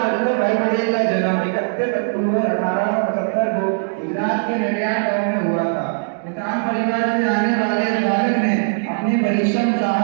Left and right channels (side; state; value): left; silent; digital silence